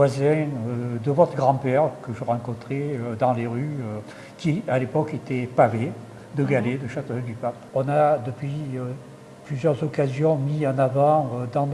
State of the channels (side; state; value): both; identical; correlation 1.00